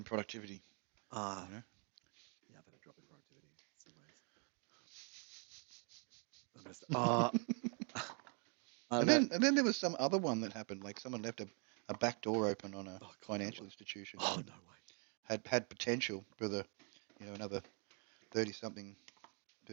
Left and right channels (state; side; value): quieter; left; 38.0 dB